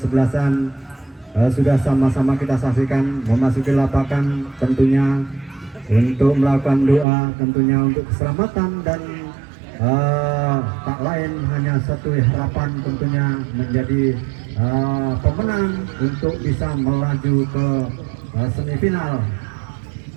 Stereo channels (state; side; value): drops out; left; at 7.1 s